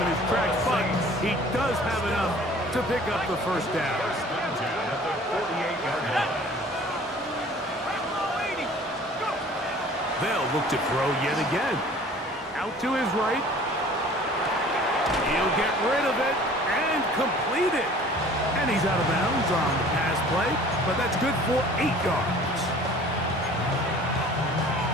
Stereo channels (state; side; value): normal; both; correlation 0.49